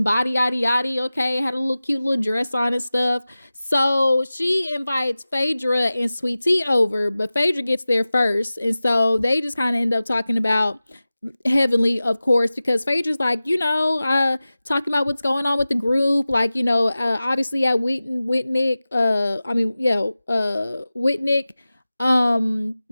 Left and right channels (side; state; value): both; inverted; correlation -0.96